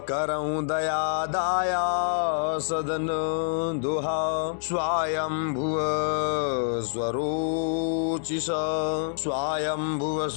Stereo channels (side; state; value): right; silent; digital silence